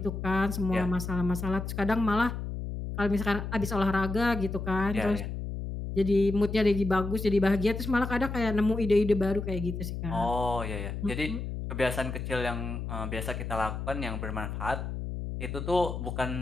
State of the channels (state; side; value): noise; left; hum, 5 dB below the sound